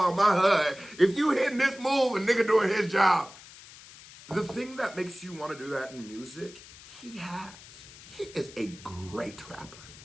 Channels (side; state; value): left; noise; hiss, 19 dB below the sound